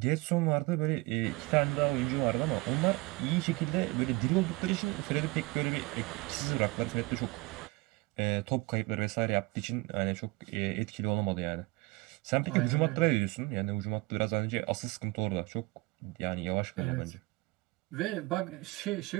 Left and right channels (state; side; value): quieter; left; 23.6 dB